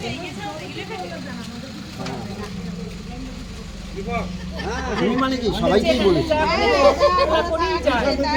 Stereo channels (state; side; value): identical; both; correlation 1.00